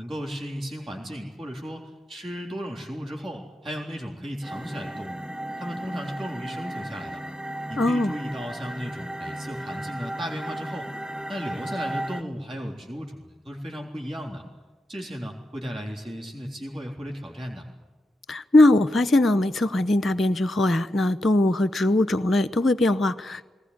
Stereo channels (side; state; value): both; normal; correlation 0.86